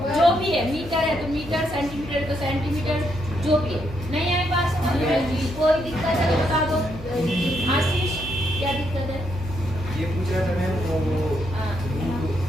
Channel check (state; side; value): normal; both; correlation 0.77